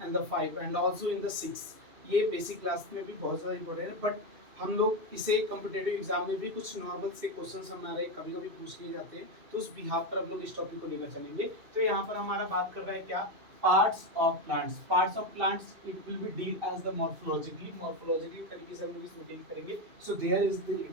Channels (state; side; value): late; left; 2.7 ms